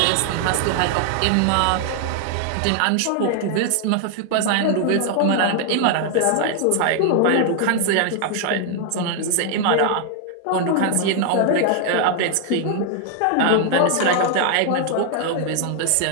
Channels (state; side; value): different; both; correlation 0.00